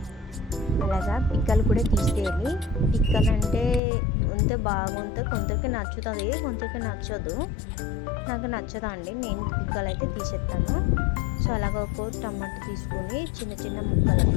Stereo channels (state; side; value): drops out; right; at 3.8 s